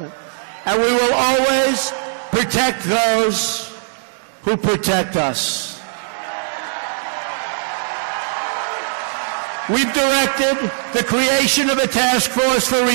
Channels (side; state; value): left; silent; digital silence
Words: And we will always protect those who protect us. We've directed the creation of a task force for